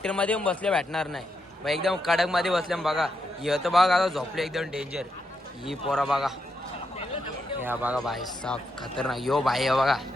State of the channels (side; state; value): both; normal; correlation 0.82